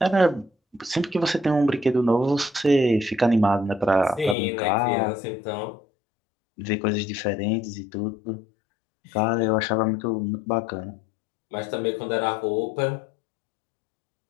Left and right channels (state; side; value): drops out; right; at 4.4 s